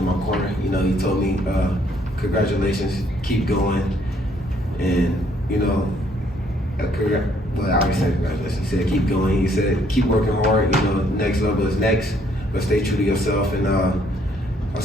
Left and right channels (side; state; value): both; normal; correlation 0.66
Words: my corner. You know, he told me, congratulations, keep going. And, you know, well, I always say congratulations. He said, keep going. He said, keep working hard. You know, next level is next, but stay true to yourself. And I